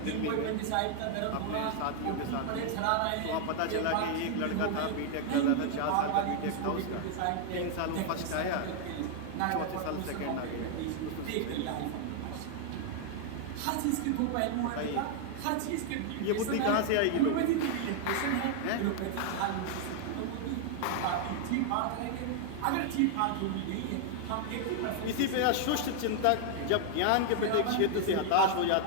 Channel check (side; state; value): both; different; correlation 0.00